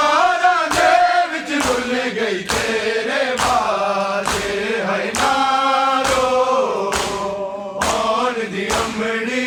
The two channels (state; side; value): identical; both; correlation 1.00